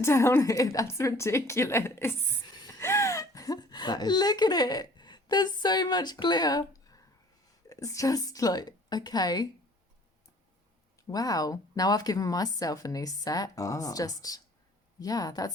here. That's ridiculous. That is. Look at it. There's so much glitter. It's just like, okay. Wow. Now I've given myself a new set. Ah. It's just, yeah,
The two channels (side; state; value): both; normal; correlation 0.52